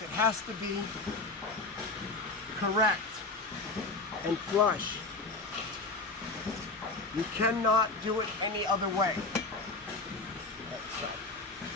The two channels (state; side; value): quieter; right; 3.5 dB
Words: it has to be correct and flush. You cannot do it any other way.